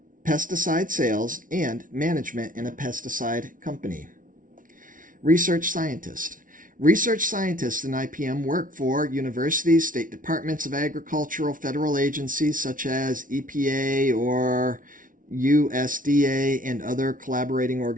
pesticide sales, and management in a pesticide company. Research scientist. Research scientists in IPM work for universities, state departments of agricultural, federal agencies such as EPA or USDA, and other collaborating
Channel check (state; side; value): late; left; 0.39 ms